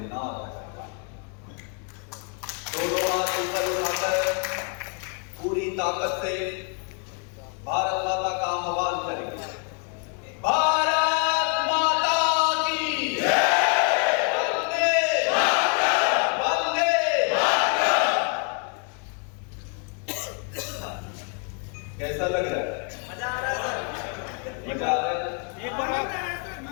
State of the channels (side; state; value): right; quieter; 38.9 dB